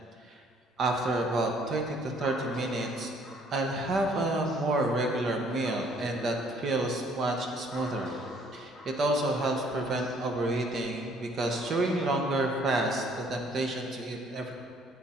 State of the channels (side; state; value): both; normal; correlation 0.61